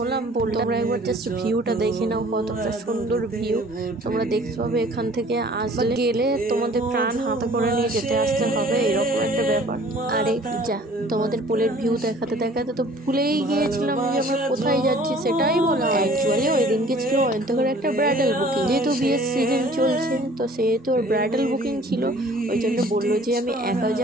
তোমরা একবার জাস্ট ভিউটা দেখে নাও, কতটা সুন্দর ভিউ তোমরা দেখতে পাবে। এখান থেকে আসলে গেলে তোমাদের প্রাণ হাতে করে নিয়ে যেতে আসতে হবে, এরকম একটা ব্যাপার। আরে যা, তোমাদের পোলের ভিউ দেখাতে দেখাতে তো ভুলেই গিয়েছিলাম যে আমরা কোথায় যাচ্ছি সেটাই বলা। অ্যাকচুয়ালি ওই দিনকে ছিল অন্তকের একটা ব্রাইডাল বুকিং, যেহেতু বিয়ের সিজন চলছে তো সেহেতু ওর ব্রাইডাল বুকিং ছিল, ওই জন্য বললো যে আমি একা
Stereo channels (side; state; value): both; normal; correlation 0.51